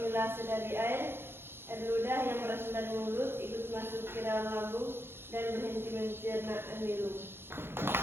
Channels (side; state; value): left; late; 0.11 ms